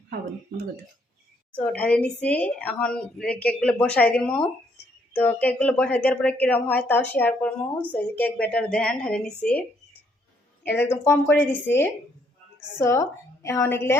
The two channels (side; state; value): both; normal; correlation 0.70